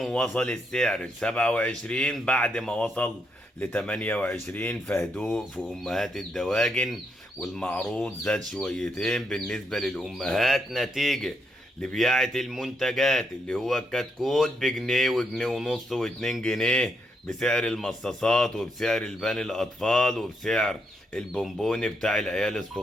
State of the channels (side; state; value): both; normal; correlation 0.78